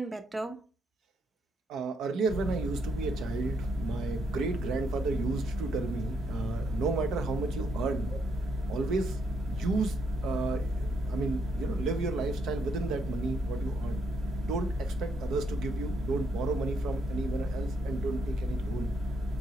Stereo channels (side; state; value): both; normal; correlation 0.75